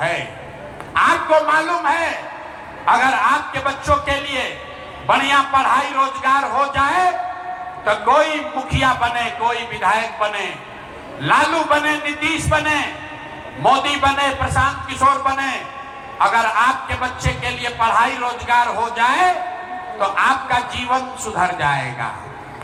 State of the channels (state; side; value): identical; both; correlation 1.00